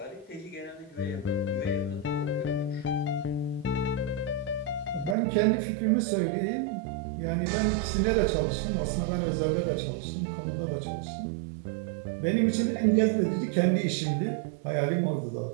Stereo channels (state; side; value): drops out; left; at 5.2 s